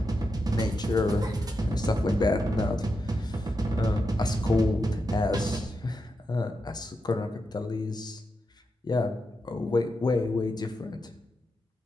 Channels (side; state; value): both; normal; correlation 0.86